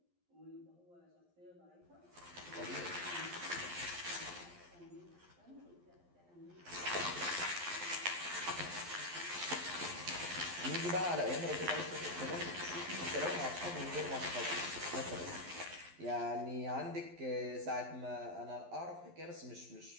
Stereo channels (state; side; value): late; left; 11 ms